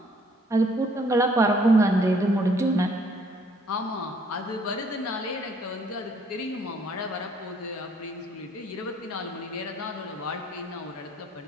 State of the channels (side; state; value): both; normal; correlation 0.62